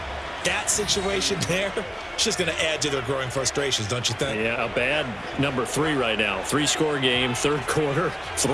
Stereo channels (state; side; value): identical; both; correlation 1.00